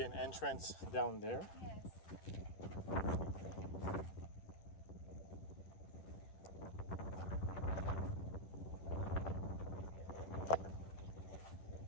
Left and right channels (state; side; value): late; right; 11 ms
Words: an entrance down there. Yes.